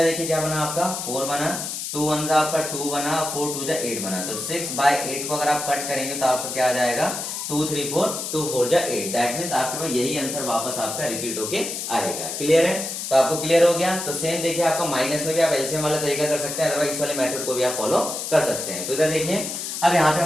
देखिए क्या बना आपका 4 बना, 2 1 जा आपका 2 बना, 4 2 जा 8 बना। तो 6/8 को अगर आप कट करेंगे तो आपका क्या आ जाएगा 2 3 4, 2 4 जा 8। दैट मीन्स आपके पास यही आंसर वापस आपका रिपीट होके आएगा। क्लियर है? तो आपको क्लियर हो गया। तो सेम देखिए आपका माइनस में भी आप एलसीएम वाला तरीका कर सकते हैं, अदरवाइज इस वाले मेथड को भी आप फॉलो कर सकते हैं। तो इधर देखिए अब यहाँ पे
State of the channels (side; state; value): left; noise; hiss, 5 dB below the sound